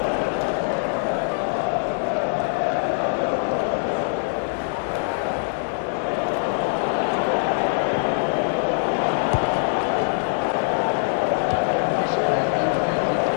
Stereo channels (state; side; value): silent; right; 63 dB below the other